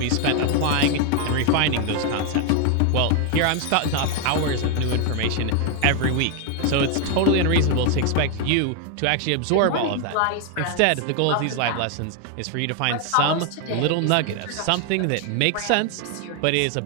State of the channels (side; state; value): both; different; correlation 0.01